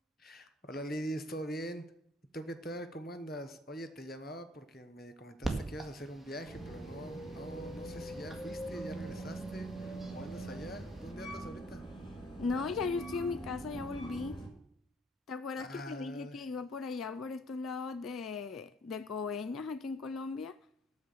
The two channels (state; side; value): normal; both; correlation 0.61